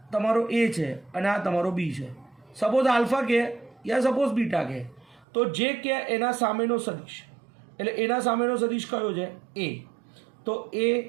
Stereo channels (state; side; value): drops out; left; at 5.2 s